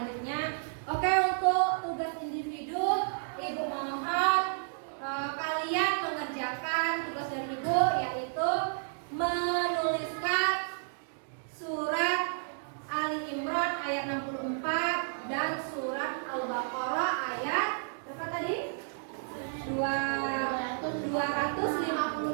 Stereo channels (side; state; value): left; silent; digital silence